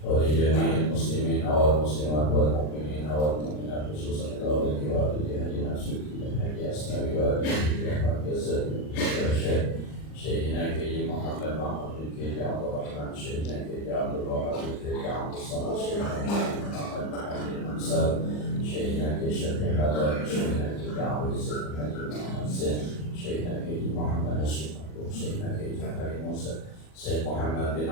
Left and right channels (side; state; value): right; late; 39 ms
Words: wa li jami'il muslimin wal muslimat wal mu'minin wal mu'minat khususan ila wali walidi hajina sunnah haji asnawi wa alihi wa sahbihi Syekhina Kiai Muhammad Mahmud bin Kiai Abdul Rahman, Syekhina Kiai Abdul Wahab bin Kiai Abdul Samad, Syekhina Muhammad bin Hamzah, Syekhina Kiai Syafiq Haddad, Syekhina Kiai Abdul Izzat Haji Muhammad Zain, Syekhina Kiai Muhammad Hashim Abdul, Syekhina Kiai Jafari Musa, Syekh Muhammad bin